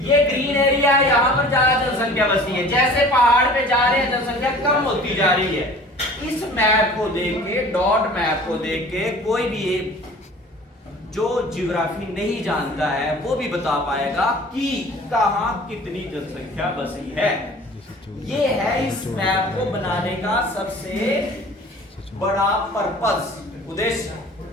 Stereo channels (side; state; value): both; normal; correlation 0.45